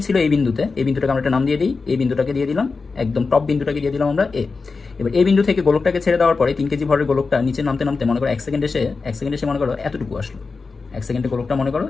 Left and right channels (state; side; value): quieter; right; 4.4 dB